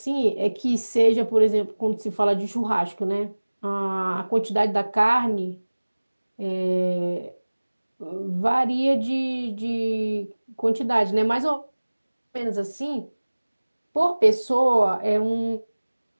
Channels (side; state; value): both; inverted; correlation -1.00